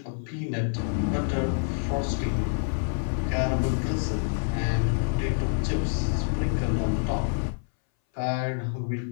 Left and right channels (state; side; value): silent; right; 60 dB below the other